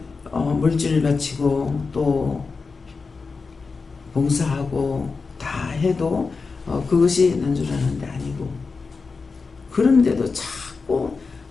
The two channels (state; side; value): quieter; right; 4.5 dB